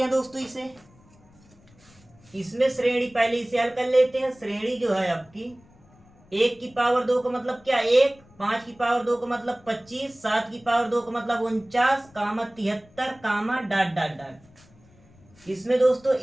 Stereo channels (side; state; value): left; noise; rumble, 28 dB below the sound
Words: हैं दोस्तों इसे। इसमें श्रेणी पहले इसे हल कर लेते हैं। श्रेणी जो है आपकी 1 की पावर 2 का मतलब क्या 1, 5 की पावर 2 का मतलब 25, 7 की पावर 2 का मतलब 49, 73, डॉट डॉट डॉट। इसमें दोस्तों